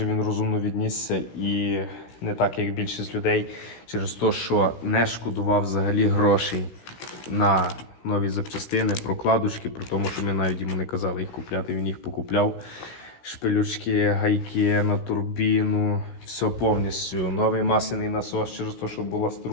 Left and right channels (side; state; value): right; late; 16 ms